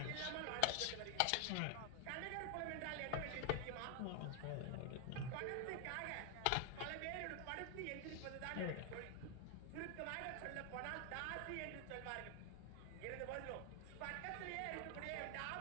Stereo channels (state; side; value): different; both; correlation 0.00